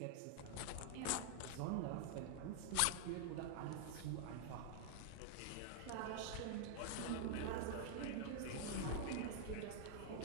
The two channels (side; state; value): both; different; correlation -0.01